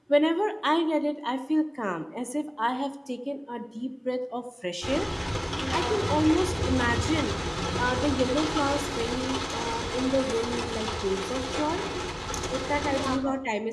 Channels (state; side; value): identical; both; correlation 1.00